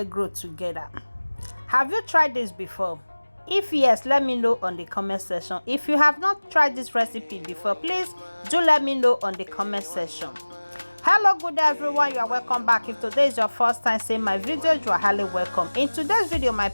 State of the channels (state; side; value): inverted; both; correlation -1.00